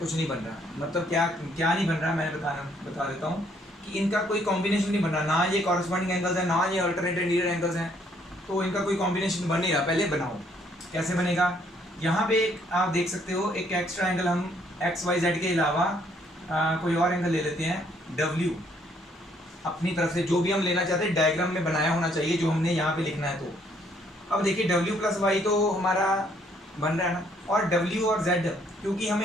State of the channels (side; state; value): both; normal; correlation 0.67